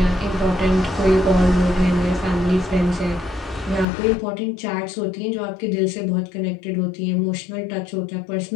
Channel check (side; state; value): right; drops out; at 3.9 s